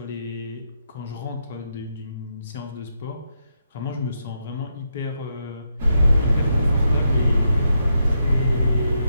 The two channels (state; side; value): inverted; both; correlation -0.81